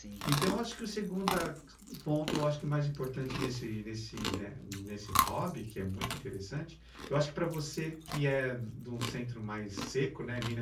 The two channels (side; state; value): both; identical; correlation 1.00